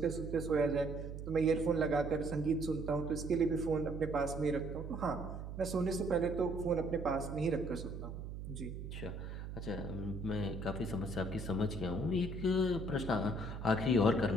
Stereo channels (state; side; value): noise; right; hum, 8 dB below the sound